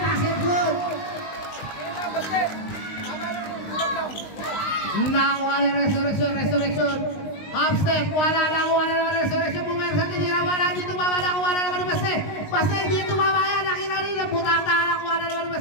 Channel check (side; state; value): right; late; 19 ms